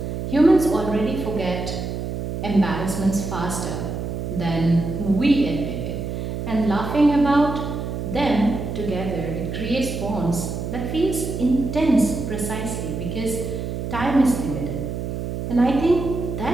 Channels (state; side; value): noise; right; hum, 4 dB below the sound